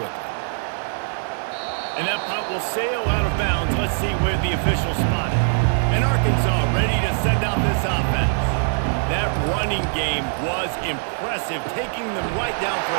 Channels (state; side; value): silent; left; digital silence